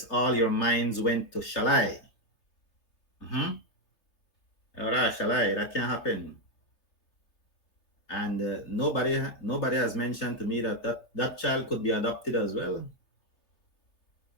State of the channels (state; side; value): late; right; 3.2 ms